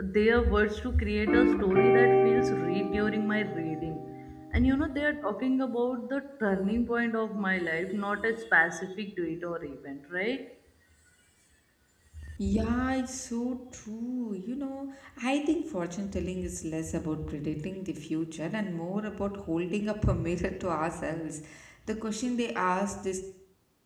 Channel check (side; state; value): both; identical; correlation 1.00